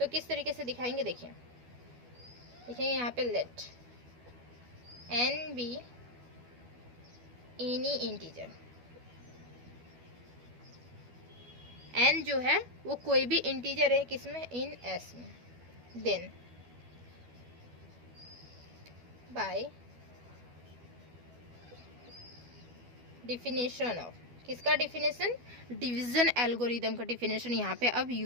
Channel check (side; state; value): left; late; 12 ms